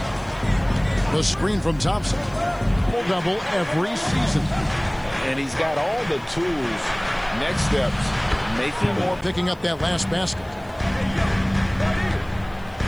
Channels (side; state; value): left; noise; hiss, 30 dB below the sound